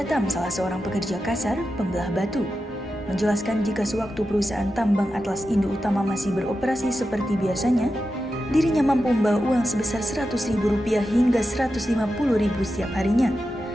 salah seorang pekerja kasar pembelah batu, menjelaskan jika sewaktu perusahaan tambang Atlas Indo Utama masih beroperasi seperti biasanya, dirinya mampu membawa uang sebesar Rp100.000 hingga Rp150.000 setiap harinya,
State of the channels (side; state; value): both; normal; correlation 0.90